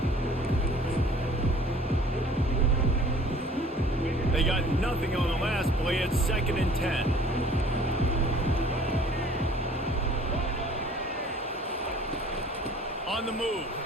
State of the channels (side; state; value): both; normal; correlation 0.52